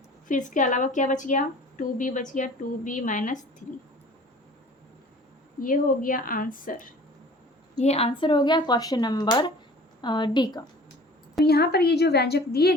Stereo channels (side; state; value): both; normal; correlation 0.47